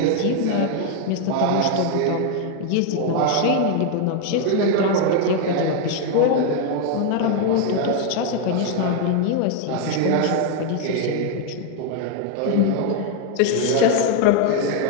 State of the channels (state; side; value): different; both; correlation 0.01